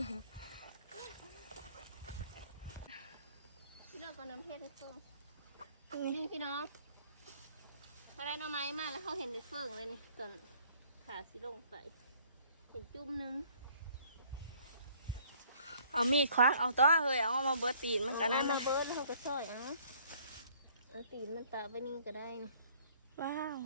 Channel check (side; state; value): both; inverted; correlation -0.59